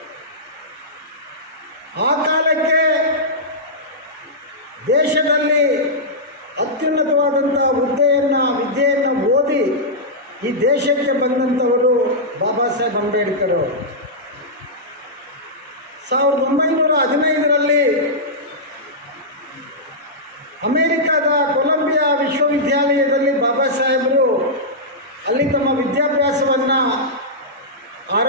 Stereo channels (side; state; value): both; normal; correlation -0.11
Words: ಆ ಕಾಲಕ್ಕೆ ದೇಶದಲ್ಲಿ ಅತ್ಯುನ್ನತವಾದಂಥ ವಿದ್ಯೆಯನ್ನು ಓದಿ ಈ ದೇಶಕ್ಕೆ ಬಂದಂಥವರು ಬಾಬಾ ಸಾಹೇಬ್ ಅಂಬೇಡ್ಕರ್. 1915ರಲ್ಲಿ ಅಮೆರಿಕದ ಕೊಲಂಬಿಯಾ ವಿಶ್ವವಿದ್ಯಾಲಯದಲ್ಲಿ ಬಾಬಾ ಸಾಹೇಬರು ಅಲ್ಲಿ ತಮ್ಮ ವಿದ್ಯಾಭ್ಯಾಸವನ್ನು